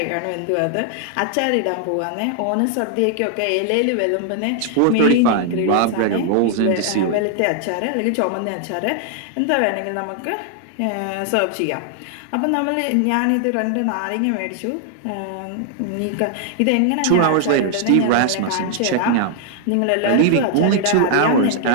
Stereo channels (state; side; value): different; both; correlation 0.00